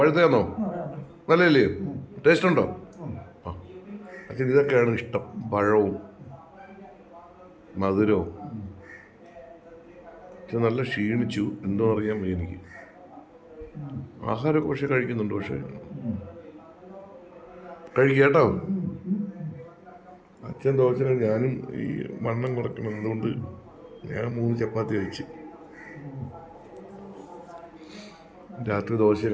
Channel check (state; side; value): identical; both; correlation 1.00